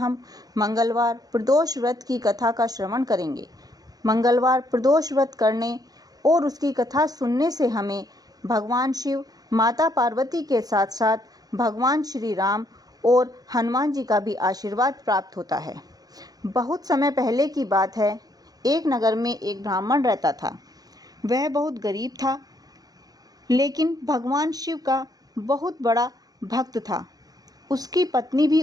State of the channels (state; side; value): late; left; 0.18 ms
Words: मंगलवार प्रदोष व्रत की कथा का श्रवण करेंगे। मंगलवार प्रदोष व्रत करने और उसकी कथा सुनने से हमें भगवान शिव, माता पार्वती के साथ साथ भगवान श्री राम और हनुमान जी का भी आशीर्वाद प्राप्त होता है। बहुत समय पहले की बात है, एक नगर में एक ब्राह्मण रहता था। वह बहुत गरीब था, लेकिन भगवान शिव का बहुत बड़ा भक्त था। उसकी पत्नी भी